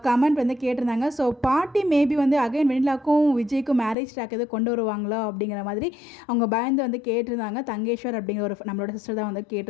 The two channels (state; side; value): drops out; right; at 4.0 s